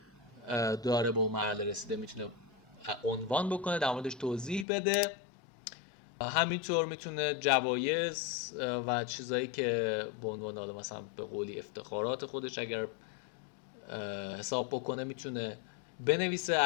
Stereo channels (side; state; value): right; drops out; at 4.7 s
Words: داره به اون مرحله رسیده میتونه عنوان بکنه، در موردش توضیح بده. همینطور میتونه جوایز و چیزایی که به عنوان حالا مثلا به قولی افتخارات خودش اگر حساب بکنه میتونه بنویسه،